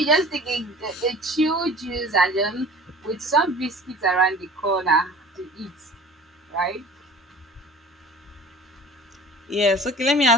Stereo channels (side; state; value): both; normal; correlation 0.43